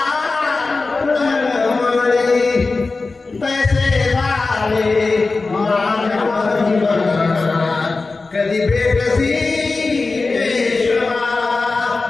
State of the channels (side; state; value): right; quieter; 3.8 dB